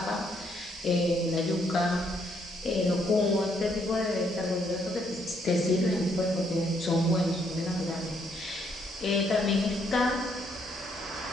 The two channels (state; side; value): normal; both; correlation 0.72